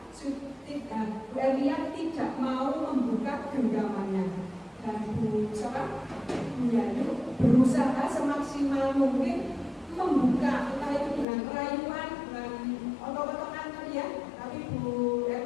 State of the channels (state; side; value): drops out; right; at 11.2 s